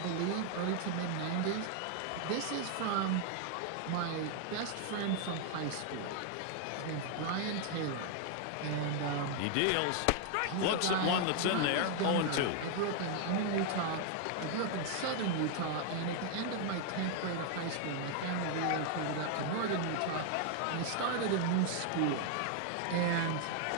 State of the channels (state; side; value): different; both; correlation 0.00